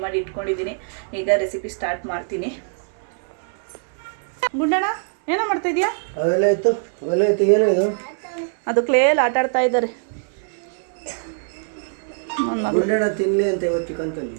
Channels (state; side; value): silent; left; 58 dB below the other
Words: ಮಾಡಿ ಇಟ್ಕೊಂಡಿದ್ದೀನಿ. ಈಗ ರೆಸಿಪಿ ಸ್ಟಾರ್ಟ್ ಮಾಡ್ತೀನಿ. ಗುಂಡಣ್ಣ ಏನೋ ಮಾಡ್ತಾ ಇದೀಯಾ? ಅದು ಕ್ಲೇಲ್ ಆಟ ಆಡ್ತಾ ಇದ್ದಾರೆ. ಗುಂಡಣ್ಣ